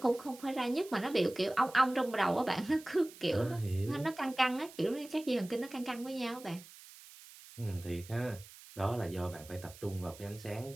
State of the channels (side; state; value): right; noise; hiss, 19 dB below the sound